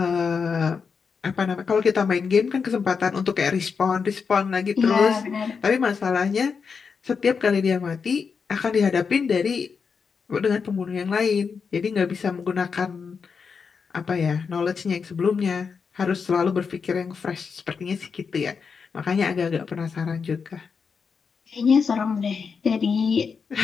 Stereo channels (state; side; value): quieter; right; 5.7 dB